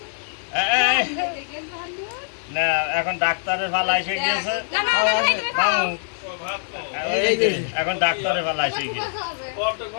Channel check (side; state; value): right; silent; digital silence